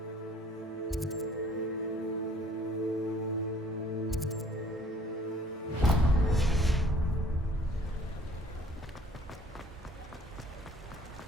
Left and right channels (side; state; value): both; normal; correlation 0.56